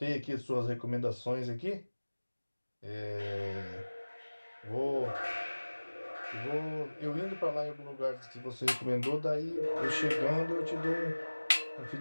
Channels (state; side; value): inverted; both; correlation -1.00